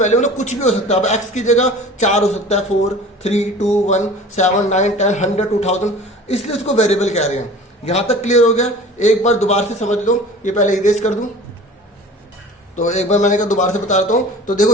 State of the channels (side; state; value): both; normal; correlation 0.42